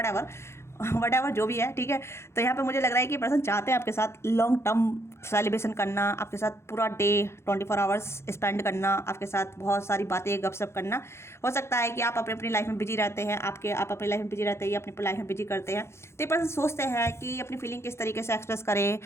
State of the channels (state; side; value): late; right; 0.13 ms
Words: एवर जो भी है, ठीक है। तो यहाँ पे मुझे लग रहा है कि पर्सन चाहते हैं आपके साथ लॉन्ग टर्म सेलिब्रेशन करना, आपके साथ पूरा डे 24 आवर्स स्पेंड करना, आपके साथ बहुत सारी बातें गपशप करना। हो सकता है कि आप अपनी लाइफ में बिजी रहते हैं, आप अपनी लाइफ में बिजी रहते हैं, या अपनी लाइफ में बिजी करते हैं, तो ये पर्सन सोचते हैं कि अपनी फीलिंग किस तरीके से एक्सप्रेस करें,